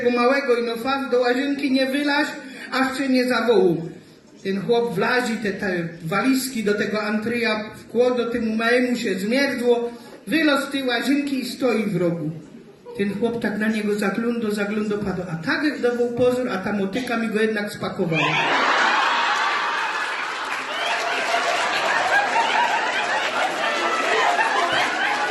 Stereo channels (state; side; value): identical; both; correlation 1.00